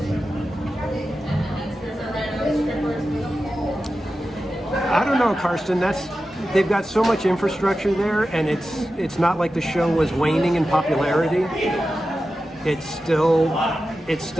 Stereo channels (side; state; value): both; normal; correlation 0.92